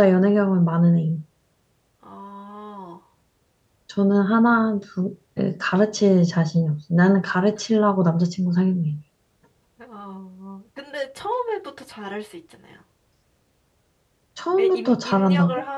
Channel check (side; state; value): both; identical; correlation 1.00